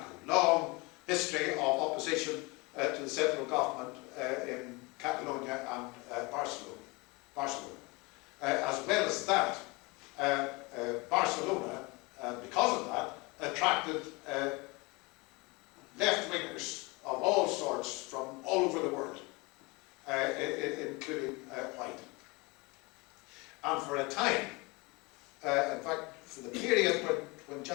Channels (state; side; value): quieter; right; 26.1 dB